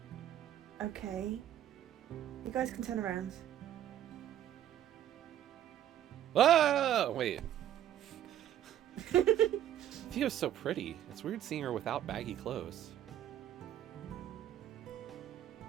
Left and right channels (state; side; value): quieter; left; 11.2 dB